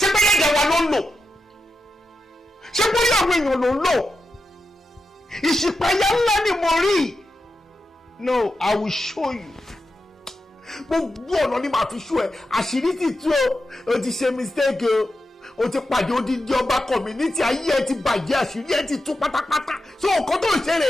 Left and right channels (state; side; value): normal; both; correlation 0.89